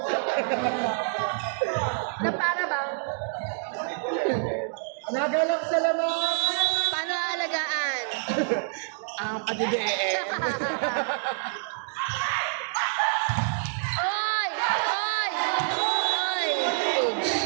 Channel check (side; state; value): left; silent; digital silence